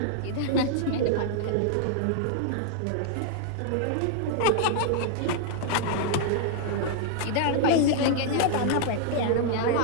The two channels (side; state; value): both; different; correlation -0.01